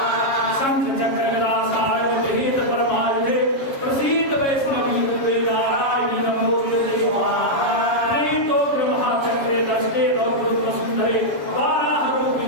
शंखचक्रगदासायवगृहीत परमायुधे प्रसीद वैष्णवी रूपे नारायणी नमोस्तुते प्रेतो ब्रह्मचक्रे दष्टे गौरवसुन्दरे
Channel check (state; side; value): late; right; 7.3 ms